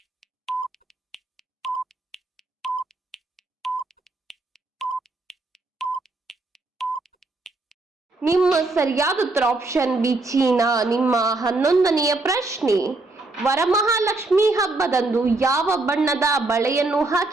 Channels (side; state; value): left; quieter; 3.1 dB